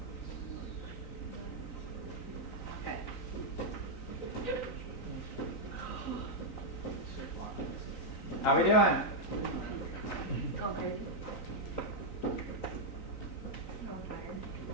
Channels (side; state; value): right; late; 3.9 ms